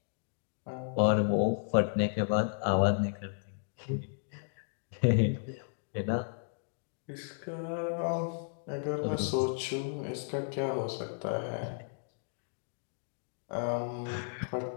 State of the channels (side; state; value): right; silent; digital silence